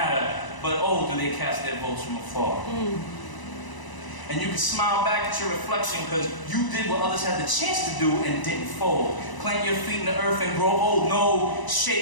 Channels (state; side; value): late; right; 1.0 ms